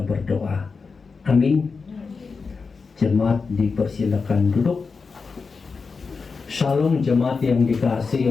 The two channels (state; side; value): quieter; right; 4.8 dB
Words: berdoa. Amin. Jemaat dipersilakan duduk. Shalom jemaat yang dikasihi